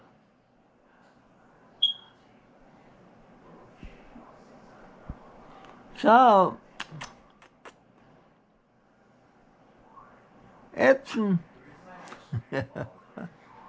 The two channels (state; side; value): identical; both; correlation 1.00